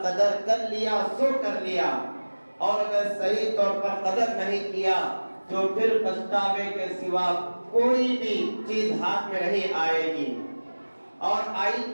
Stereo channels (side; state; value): both; inverted; correlation -1.00